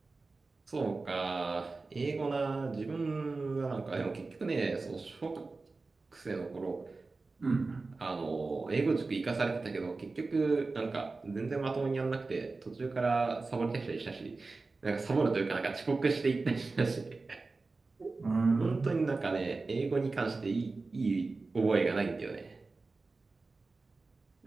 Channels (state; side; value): quieter; left; 3.7 dB